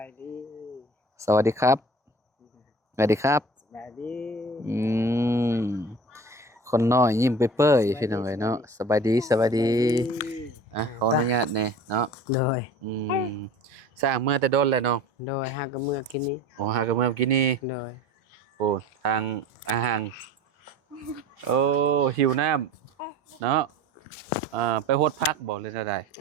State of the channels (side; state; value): both; normal; correlation 0.41